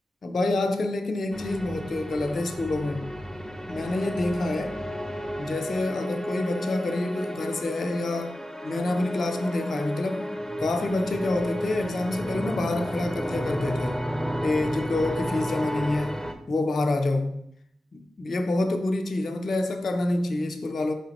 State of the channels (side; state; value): both; normal; correlation 0.93